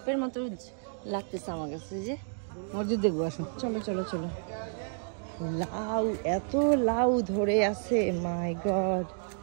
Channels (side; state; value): left; silent; 57 dB below the other